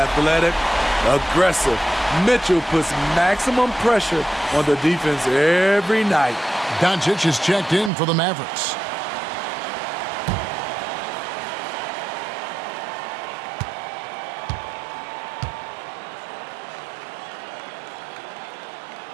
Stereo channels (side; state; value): left; drops out; at 7.9 s